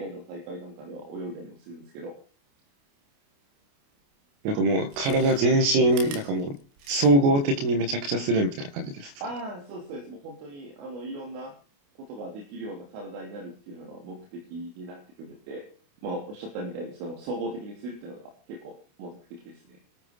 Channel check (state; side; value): late; left; 29 ms